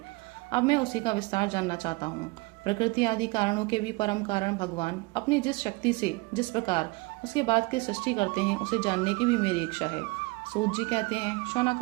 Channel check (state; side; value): quieter; left; 24.9 dB